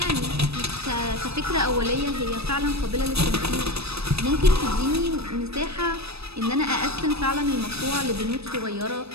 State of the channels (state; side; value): late; left; 0.78 ms